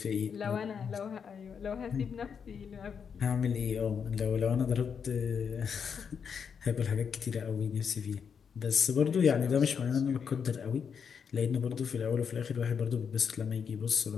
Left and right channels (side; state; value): right; quieter; 6.8 dB